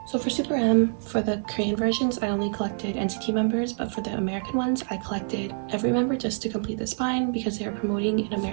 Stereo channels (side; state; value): left; silent; 61 dB below the other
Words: So for Super M, for the Korean versions, I only collected NCT members, but for the American ones, I collected every member just to complete the spine because they were promoting in